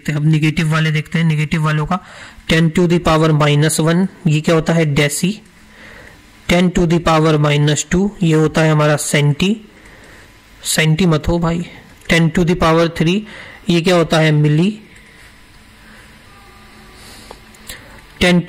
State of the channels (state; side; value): identical; both; correlation 1.00